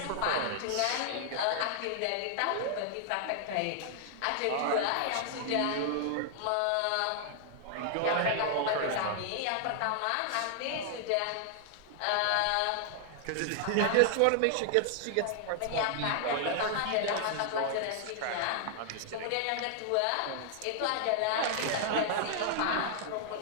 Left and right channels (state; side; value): different; both; correlation 0.00